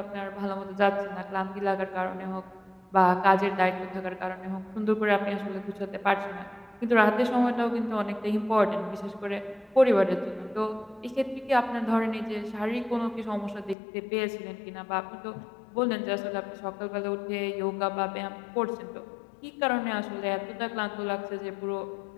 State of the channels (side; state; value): right; drops out; at 13.8 s